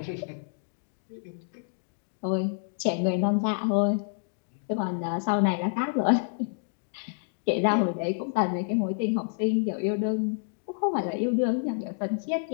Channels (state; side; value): silent; right; digital silence